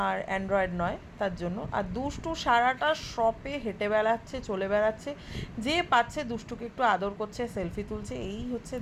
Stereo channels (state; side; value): identical; both; correlation 1.00